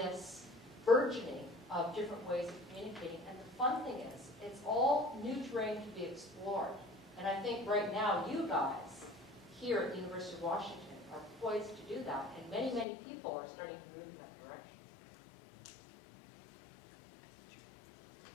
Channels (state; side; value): drops out; right; at 12.9 s